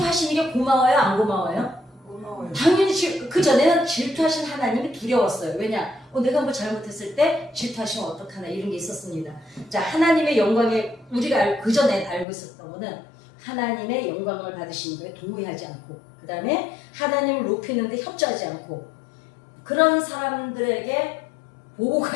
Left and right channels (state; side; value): drops out; right; at 12.2 s